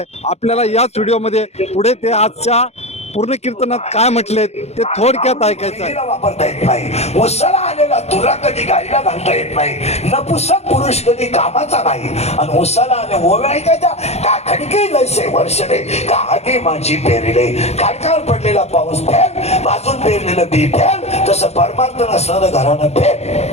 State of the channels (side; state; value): right; late; 0.31 ms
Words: आपल्याला याच व्हिडिओमध्ये पुढे ते आजच्या पूर्ण कीर्तनात काय म्हटले ते थोडक्यात ऐकायचं आहे. वापरता येत नाही. उसाला आलेला तुरा कधी गायला घालता येत नाही. नपुसक पुरुष कधी कामाचा नाही. आणि उसाला आले ओव्या ऐकायच्या का खडके लयसे वर्षले का आगे माझी पेरले काडकावर पडलेला पाऊस फेल भाजून पेरलेलं बी फेल तसं परमार्थ नसणारं घरानं